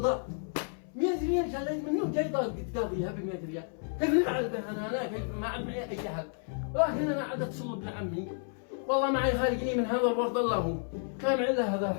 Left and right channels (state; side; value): silent; right; 57 dB below the other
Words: 100 ريال شليت منه جاي تقاضيها ب 100 ريال، كيف نفعل به انا كيف ما عاد معي اي حل، ولكن انا عاد اتصل بابن عمي، والله معي خارجني من هذا الورد الله هو، ما معي الا هذا